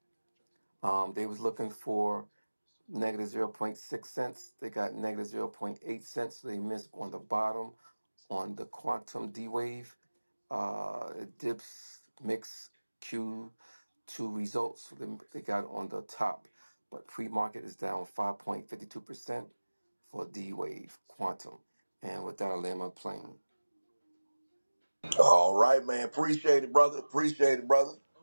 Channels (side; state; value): both; inverted; correlation -1.00